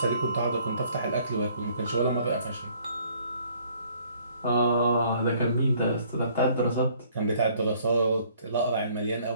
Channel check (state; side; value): inverted; both; correlation -0.61